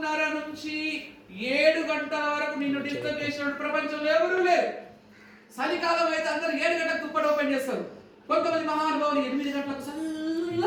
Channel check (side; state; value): both; identical; correlation 1.00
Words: నుంచి 7 గంటల వరకు నిన్ను డిస్టర్బ్ చేసిన ప్రపంచంలో ఎవరూ లేరు. చలికాలం అయితే అందరూ 7 గంటలకు దుప్పటి ఓపెన్ చేస్తారు. కొంతమంది మహానుభావులు 8 గంటలకు